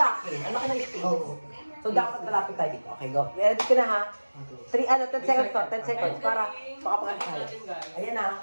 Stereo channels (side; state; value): both; inverted; correlation -1.00